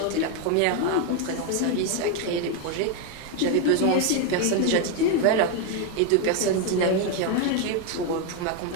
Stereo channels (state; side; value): different; both; correlation 0.01